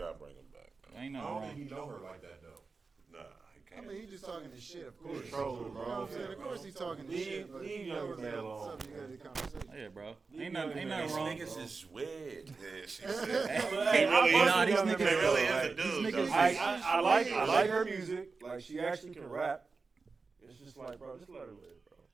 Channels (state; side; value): quieter; left; 4.3 dB